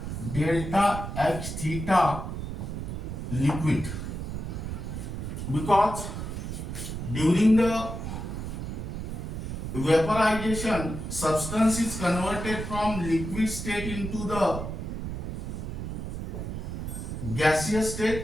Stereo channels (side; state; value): right; noise; rumble, 5 dB below the sound